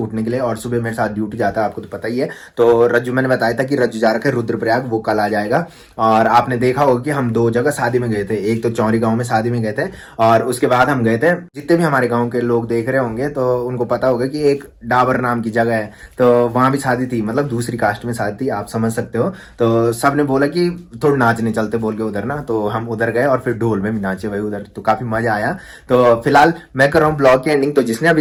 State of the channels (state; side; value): identical; both; correlation 1.00